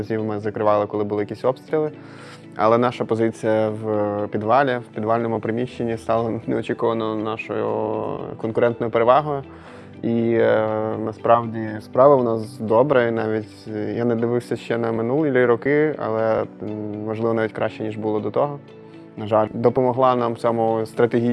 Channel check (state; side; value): identical; both; correlation 1.00